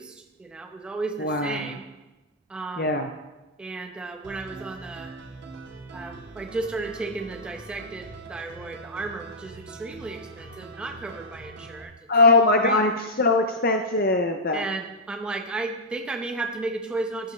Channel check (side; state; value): both; normal; correlation -0.07